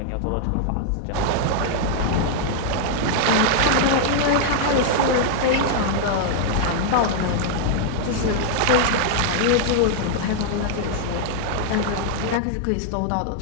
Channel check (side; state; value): both; different; correlation -0.01